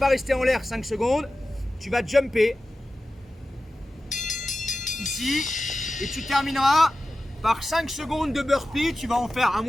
rester en l'air 5 secondes. Tu vas jumper. Ici. Et tu termineras par 5 secondes de burpee. Tu vas en faire, à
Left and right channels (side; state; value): both; normal; correlation 0.94